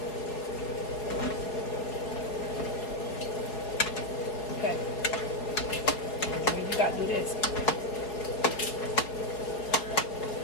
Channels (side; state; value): right; late; 4.8 ms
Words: Okay. You gotta do this.